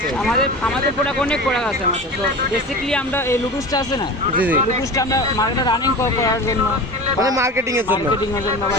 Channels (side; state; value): both; normal; correlation 0.32